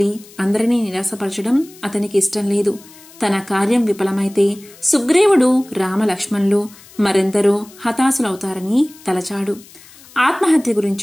అందరినీ నిరాశపరచడం అతనికి ఇష్టం లేదు. తన కార్యం విఫలమైతే సుగ్రీవుడు, రామలక్ష్మణులు మరెందరో హతాశులవుతారని తలచాడు. ఆత్మహత్య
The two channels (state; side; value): noise; left; hiss, 23 dB below the sound